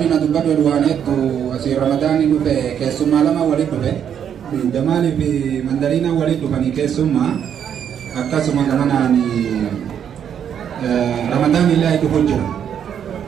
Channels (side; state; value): left; quieter; 8.7 dB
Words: الدبر الوانيت وأسير رمضان يبقى كيسو مالما ولد به دمالي في مندرينا ولد بني كيسو ما أكاسو ما كمان رمضان الله يدخل